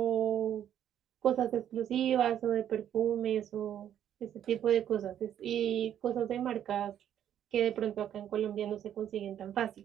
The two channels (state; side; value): quieter; left; 10.2 dB